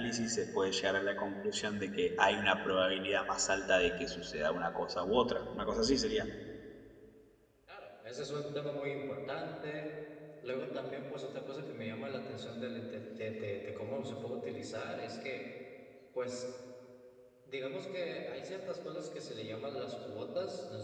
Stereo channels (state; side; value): identical; both; correlation 1.00